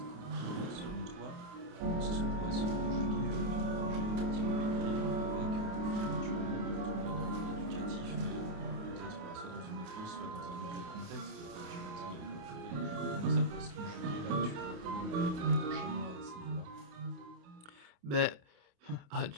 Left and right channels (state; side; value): late; left; 28 ms